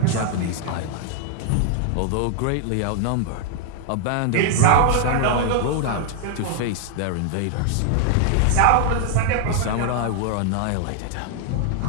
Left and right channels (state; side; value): different; both; correlation 0.00